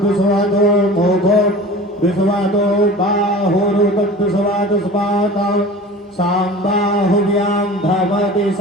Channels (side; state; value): both; normal; correlation 0.39